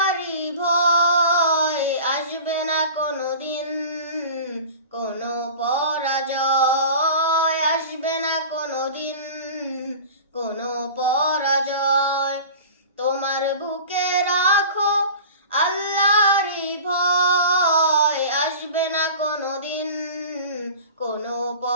ভয়, আসবে না কোনোদিন কোনো পরাজয়, আসবে না কোনোদিন কোনো পরাজয়। তোমার বুকে রাখো আল্লাহরই ভয়, আসবে না কোনোদিন কোনো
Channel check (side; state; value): both; inverted; correlation -0.38